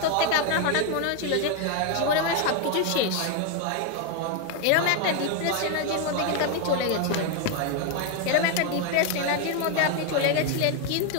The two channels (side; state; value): both; different; correlation 0.01